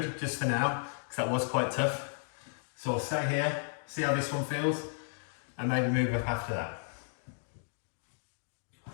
just for now, because that was quite tough. So I'll stay here, see how this one feels, and maybe move up after that.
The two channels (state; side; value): silent; right; digital silence